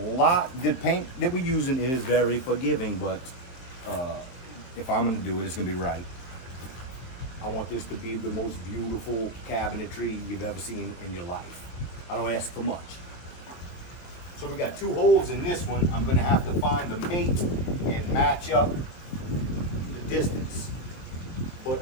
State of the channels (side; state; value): right; late; 23 ms